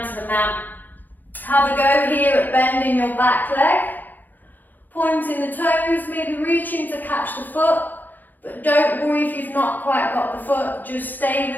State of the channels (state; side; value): late; right; 0.086 ms